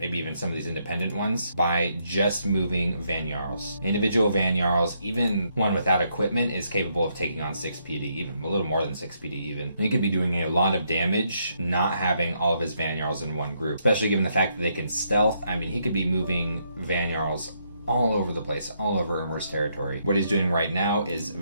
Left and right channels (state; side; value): inverted; both; correlation -0.75